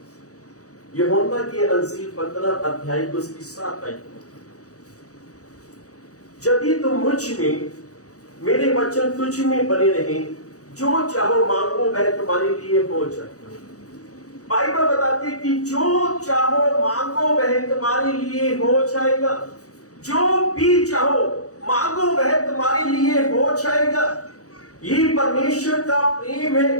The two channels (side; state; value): right; late; 0.66 ms